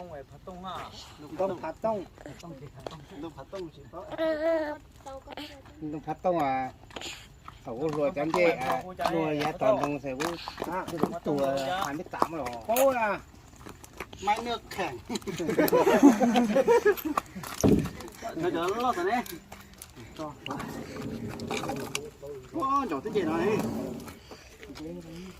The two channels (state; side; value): identical; both; correlation 1.00